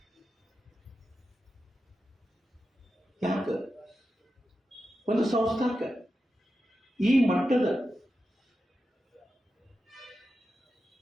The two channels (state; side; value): normal; both; correlation 0.90